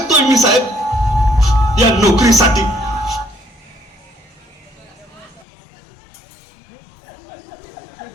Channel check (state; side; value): drops out; right; at 5.5 s